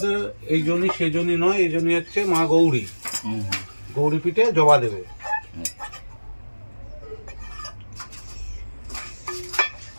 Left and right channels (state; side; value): inverted; both; correlation -1.00